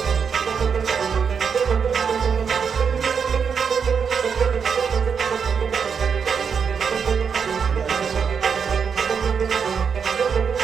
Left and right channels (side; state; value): left; quieter; 6.5 dB